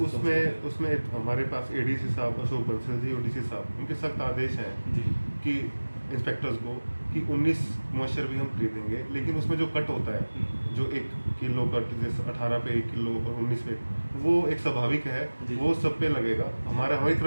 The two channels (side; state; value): both; inverted; correlation -1.00